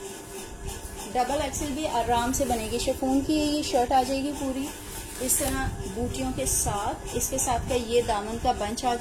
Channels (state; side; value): identical; both; correlation 1.00